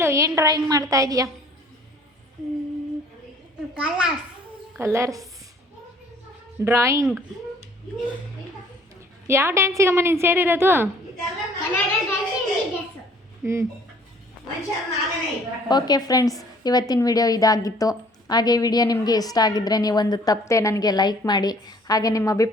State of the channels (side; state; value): both; normal; correlation 0.56